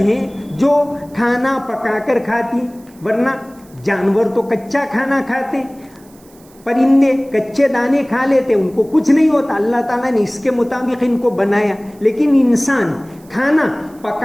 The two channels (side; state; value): right; noise; hiss, 28 dB below the sound